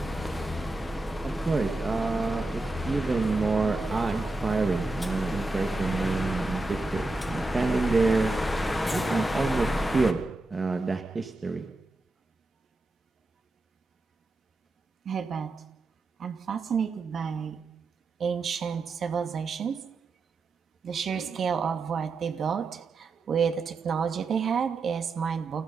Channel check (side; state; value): left; quieter; 3.1 dB